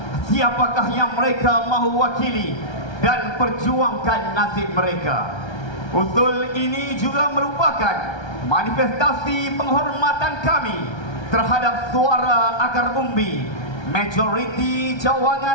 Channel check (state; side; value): late; right; 1.3 ms